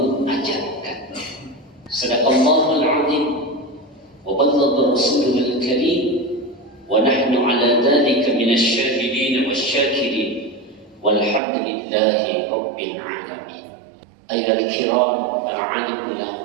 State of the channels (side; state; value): left; drops out; at 11.4 s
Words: Sadaqallahul 'azim wa ballagha rasuluhul karim wa nahnu 'ala dzalika minasy syahidin wasyakirin walhamdulillahi rabbil alamin. Ayyuhal kiram, para alim